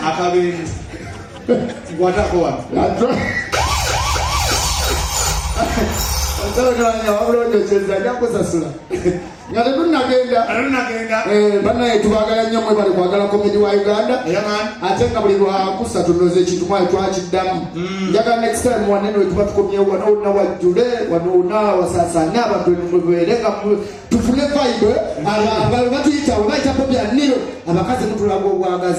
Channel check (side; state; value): both; identical; correlation 1.00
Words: akabe ngwatako wa Ndio wabulonde cheza yako sasula. Ngate tunagenda. Bana etubagala nnyo mwe bali kwagala komedi wa Uganda. Atenga buli lwakusa tunoze kintu mwa twakiddamu. Njaga next time wanene etuba tukomye wano na wajule wano na wasasanya abantu mweberenga tufune vibe aba batuyita baita popya nilo abakazi mutulago